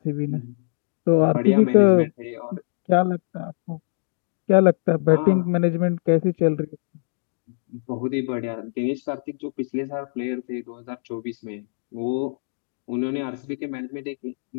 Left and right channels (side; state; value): right; silent; digital silence